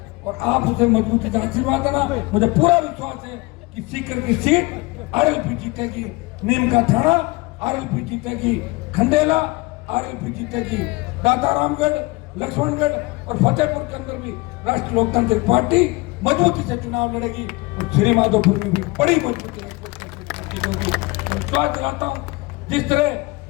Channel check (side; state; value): right; quieter; 23.9 dB